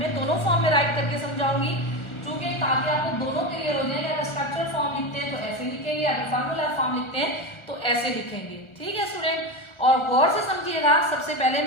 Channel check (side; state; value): right; late; 1.4 ms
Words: दोनों फॉर्म में राइट करके समझाऊंगी, क्योंकि ताकि आपको दोनों क्लियर हो जाए। अगर स्ट्रक्चरल फॉर्म लिखते हैं तो ऐसे लिखेंगे, अगर फार्मूलर फॉर्म लिखते हैं तो ऐसे लिखेंगे, ठीक है स्टूडेंट। और गौर से समझिएगा, सबसे पहले